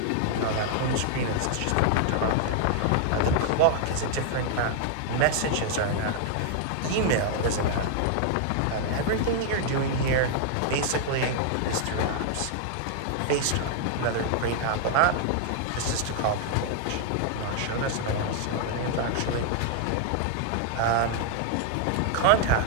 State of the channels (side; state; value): both; different; correlation 0.00